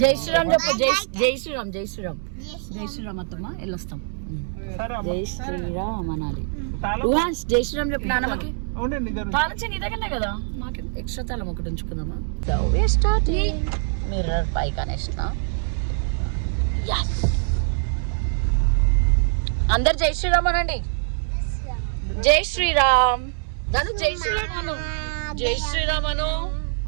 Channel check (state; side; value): silent; left; 63 dB below the other